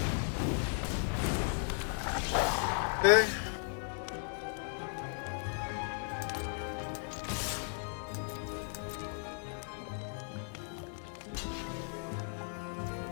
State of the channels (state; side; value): silent; right; 54 dB below the other